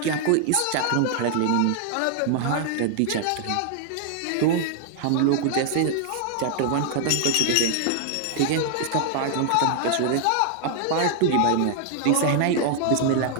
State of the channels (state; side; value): different; both; correlation 0.00